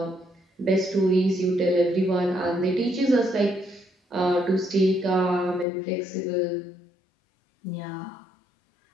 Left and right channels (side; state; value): right; drops out; at 5.7 s